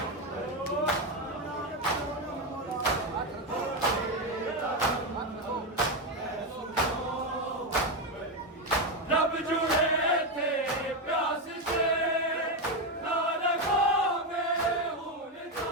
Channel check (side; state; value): both; normal; correlation 0.09